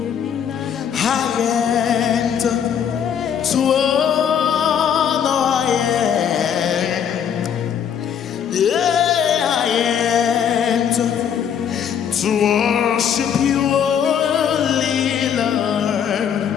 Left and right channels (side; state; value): right; quieter; 8.3 dB